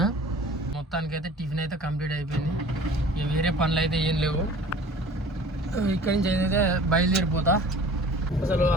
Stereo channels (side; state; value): both; normal; correlation 0.46